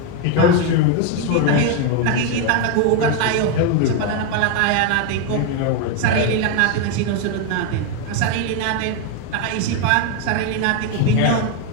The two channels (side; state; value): both; different; correlation 0.02